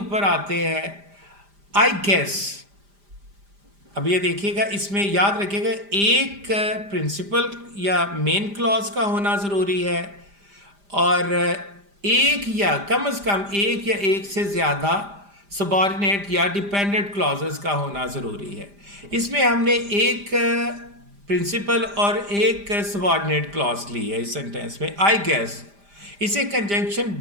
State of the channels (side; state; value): left; late; 5.0 ms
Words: ऊपर आते हैं. I guess. अब ये देखिएगा, इसमें याद रखिएगा एक प्रिंसिपल या मेन क्लॉज का होना ज़रूरी है, और एक या कम से कम एक या एक से ज़्यादा सबऑर्डिनेट या डिपेंडेंट क्लॉजेस का होना ज़रूरी है. इसमें हमने एक प्रिंसिपल और एक सबऑर्डिनेट क्लॉज ली है इस सेंटेंस में. आई गेस, इसे कंजंक्शन